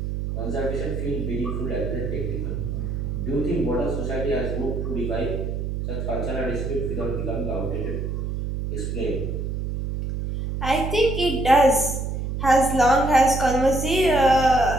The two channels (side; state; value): right; noise; hum, 3 dB below the sound